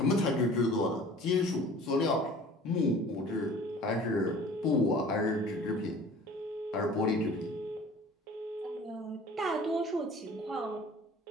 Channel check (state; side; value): normal; both; correlation 0.46